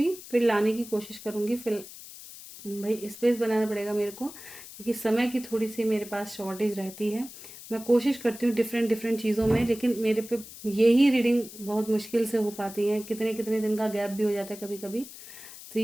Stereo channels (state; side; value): noise; left; hiss, 15 dB below the sound